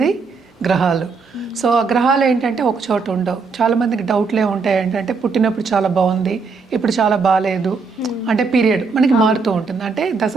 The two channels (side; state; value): left; quieter; 4.8 dB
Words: గ్రహాలు. సో ఆ గ్రహాలు ఏంటంటే ఒక చోట ఉండవు. చాలామందికి డౌట్లే ఉంటాయి ఏంటంటే పుట్టినప్పుడు చాలా బాగుంది, ఇప్పుడు చాలా బాగాలేదు. అంటే పీరియడ్ మనకి మారుతూ ఉంటుంది, అంటే